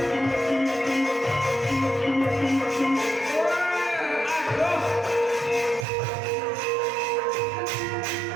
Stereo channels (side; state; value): left; drops out; at 5.9 s